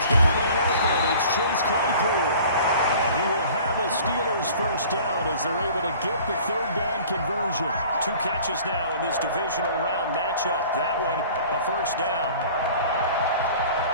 got a man open. It's Chase Claypool. And he will have a Steelers first down as they're able to get the 3rd down conversion. 2 catches now in this divisional round matchup. That one, a first down.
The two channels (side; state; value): both; inverted; correlation -0.47